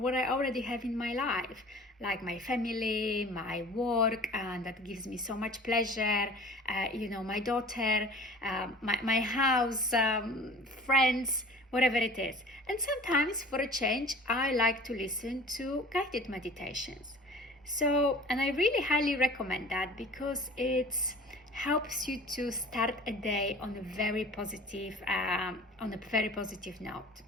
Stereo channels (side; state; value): both; normal; correlation 0.44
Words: I already have in my life, like my family, my work, and that gives me so much pleasure. My daughter, my house, friends, whatever it is. And sometimes, for a change, I like to listen to guided meditations. And I really highly recommend that because it helps you to start a day on a very positive note.